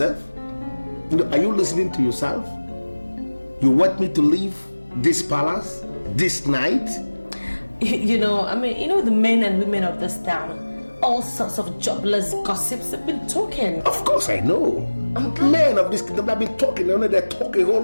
You know, are you listening to yourself? You want me to leave this palace this night? You know the men and women of this town, all sorts of jobless gossips have been talking. Of course I know. Men of this kingdom have been talking, they're talking a whole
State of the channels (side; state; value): both; inverted; correlation -1.00